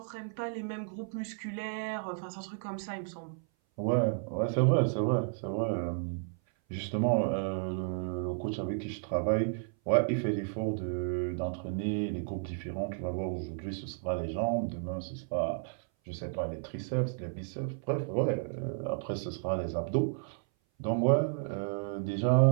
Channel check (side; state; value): left; silent; 56 dB below the other